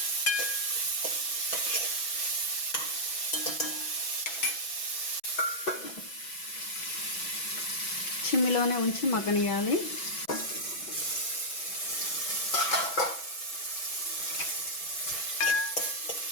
చిమ్మిలోనే ఉంచి మగ్గనియాలి.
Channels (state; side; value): late; right; 6.1 ms